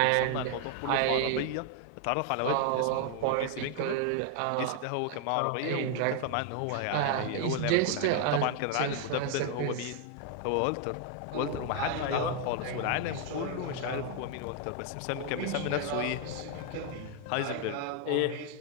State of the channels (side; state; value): both; different; correlation 0.00